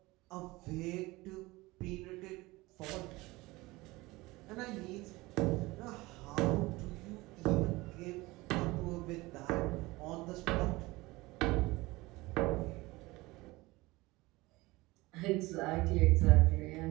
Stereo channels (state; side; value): quieter; left; 21.1 dB